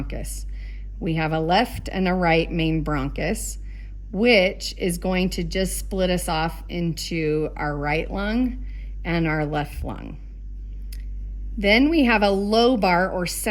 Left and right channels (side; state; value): both; identical; correlation 1.00